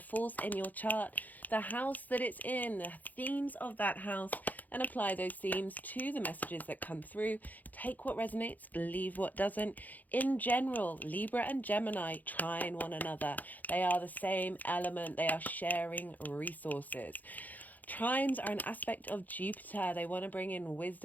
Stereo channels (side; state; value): right; late; 0.082 ms